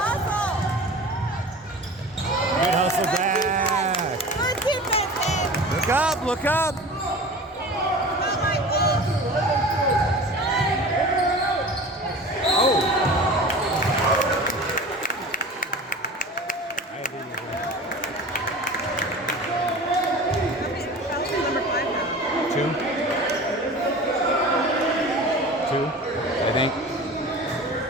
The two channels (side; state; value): both; normal; correlation 0.37